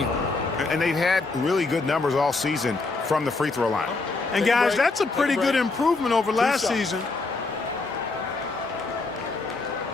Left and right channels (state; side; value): quieter; right; 3.7 dB